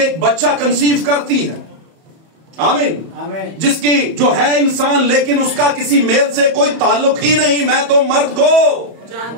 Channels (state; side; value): late; left; 31 ms